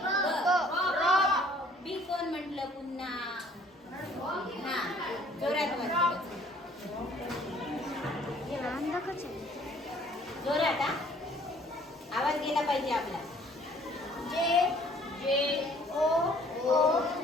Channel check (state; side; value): normal; both; correlation 0.58